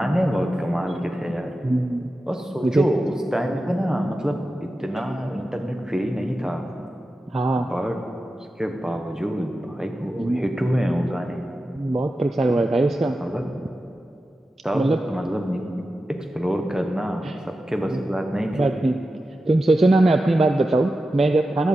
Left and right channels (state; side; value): normal; both; correlation 0.92